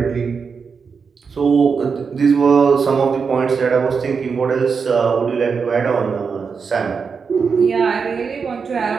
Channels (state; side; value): quieter; left; 5.6 dB